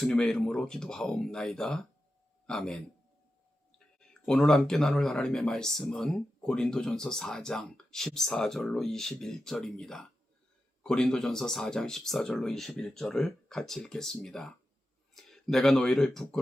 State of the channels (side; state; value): both; normal; correlation 0.91